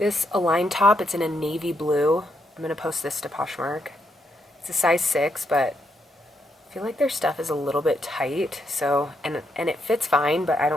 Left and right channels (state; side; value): normal; both; correlation 0.79